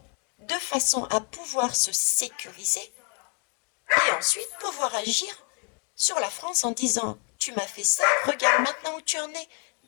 de façon à pouvoir se sécuriser et ensuite pouvoir agir sur la France en disant tu m'as fait ça, regarde maintenant où tu en es,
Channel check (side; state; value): right; quieter; 37.0 dB